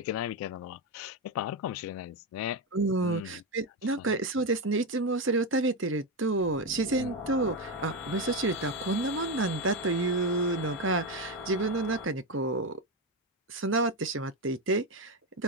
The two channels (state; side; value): normal; both; correlation 0.11